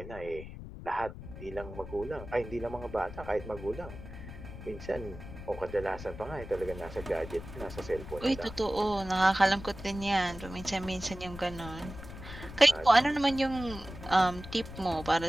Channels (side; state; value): left; noise; rumble, 12 dB below the sound